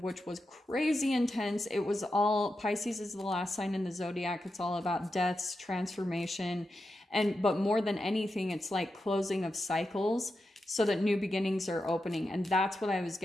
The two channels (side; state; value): both; normal; correlation 0.88